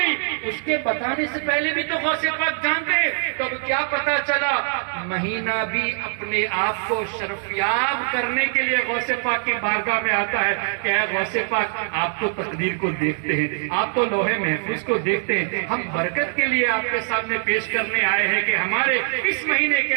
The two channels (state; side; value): silent; left; 60 dB below the other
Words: اس کے بتانے سے پہلے بھی تو غوث پاک جانتے ہیں. تو کیا پتا چلا, مہینہ بھی اپنے آپ کو شرفیاب کرنے کے لیے غوث پاک کی بارگاہ میں آتا ہے کہ اے غوث پاک, آپ تو تقدیر کو دیکھتے ہیں, آپ تو لوح محفوظ کو دیکھتے ہیں, ہم برکت کے لیے آپ کے سامنے پیش کرنے آئے ہیں کہ ہمارے اس مہینے کے